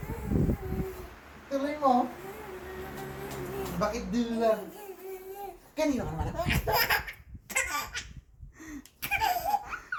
Tuloy mo. Bakit din lang? Kanino ka nagmana?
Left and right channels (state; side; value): identical; both; correlation 1.00